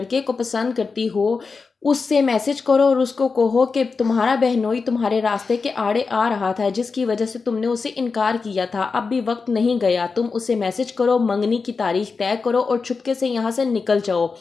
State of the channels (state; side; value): quieter; right; 4.7 dB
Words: को पसंद करती हो उससे मैसेज करो और उसको कहो कि तुम्हारा बहनोई तुम्हारे रास्ते के आड़े आ रहा था जिसकी वजह से तुमने उसे इनकार किया था, अब भी वक्त नहीं गया। तुम उसे मैसेज करो, मंगनी की तारीख तय करो और चुपके से यहाँ से निकल जाओ।